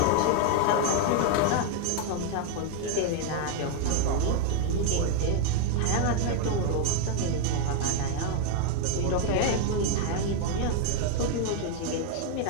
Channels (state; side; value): different; both; correlation 0.00